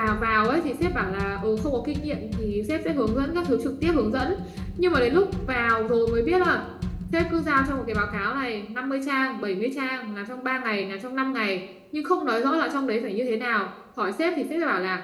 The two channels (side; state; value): both; identical; correlation 1.00